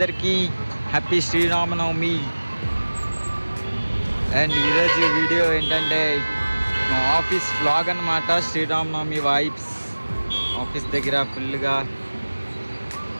happy Sri Rama Navami. And ఈరోజు video ఏంటంటే మా ఆఫీస్ వ్లాగ్ అన్నమాట. శ్రీరామనవమి వైబ్స్ ఆఫీస్ దగ్గర ఫుల్గా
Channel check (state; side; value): inverted; both; correlation -1.00